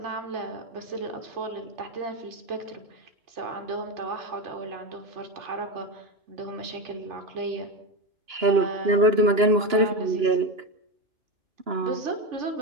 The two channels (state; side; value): late; left; 2.9 ms